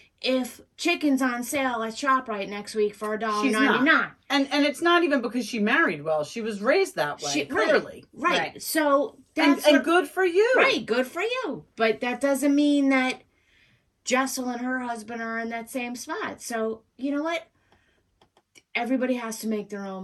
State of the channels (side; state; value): both; identical; correlation 1.00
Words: if chicken's on sale at ShopRite next week for She's not. $1.99. And it's not even because she married well. She was raised that way, clearly. Right. Right. So And, that's and what- good for you. Right, good for you. But that doesn't mean that Jessel and her husband are in that same spot. So, you know what? Everybody has to make their